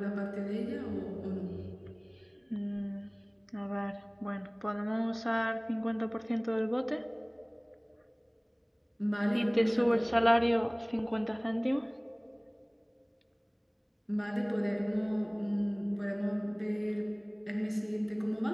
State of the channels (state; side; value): identical; both; correlation 1.00